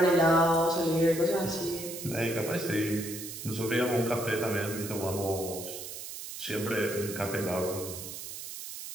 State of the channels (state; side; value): noise; right; hiss, 9 dB below the sound